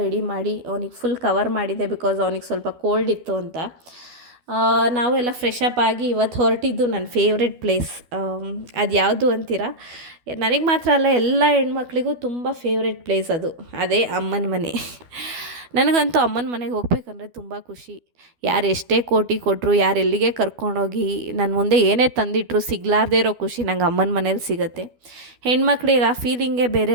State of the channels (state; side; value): late; left; 12 ms